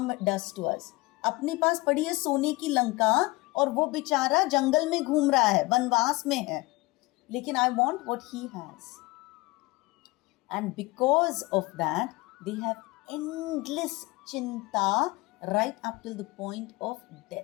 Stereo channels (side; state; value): right; quieter; 22.3 dB